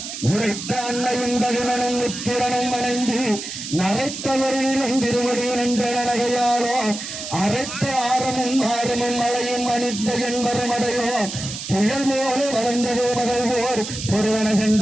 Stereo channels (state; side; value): noise; right; hiss, 8 dB below the sound